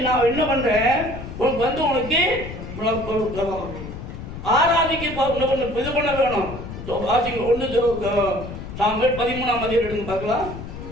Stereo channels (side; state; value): left; noise; rumble, 10 dB below the sound